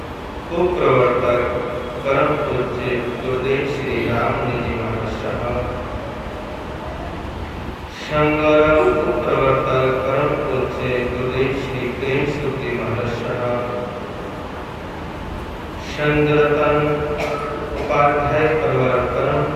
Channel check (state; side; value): identical; both; correlation 1.00